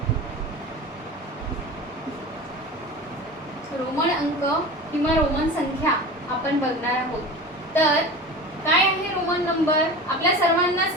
रोमन अंक किंवा रोमन संख्या आपण बघणार आहोत. तर काय आहे रोमन नंबर? आपल्या सर्वांनाच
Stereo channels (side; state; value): both; normal; correlation 0.33